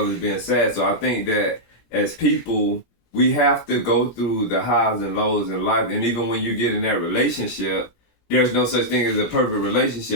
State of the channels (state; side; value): late; right; 17 ms